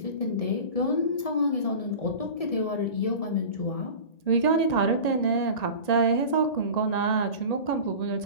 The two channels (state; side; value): late; right; 1.8 ms